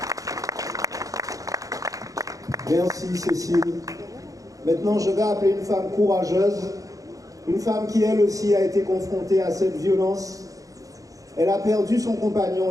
Merci Cécile. Maintenant, je vais appeler une femme courageuse, une femme qui elle aussi a été confrontée à cette violence. Elle a perdu son compagnon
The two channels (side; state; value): left; late; 0.17 ms